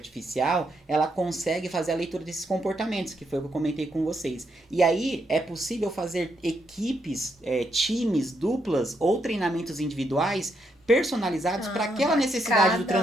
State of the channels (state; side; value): normal; both; correlation 0.78